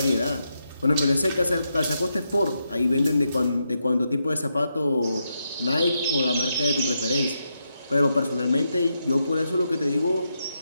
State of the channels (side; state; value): both; inverted; correlation -0.83